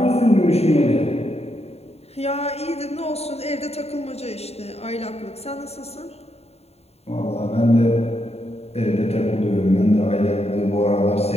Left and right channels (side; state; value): right; late; 0.30 ms